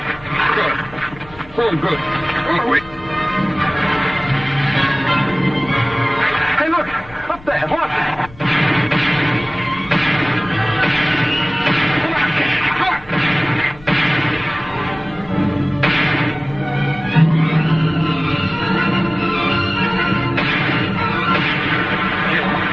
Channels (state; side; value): noise; left; rumble, 21 dB below the sound